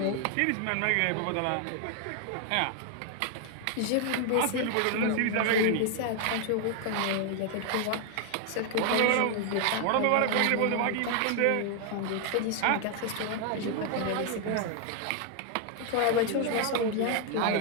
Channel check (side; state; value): both; different; correlation 0.00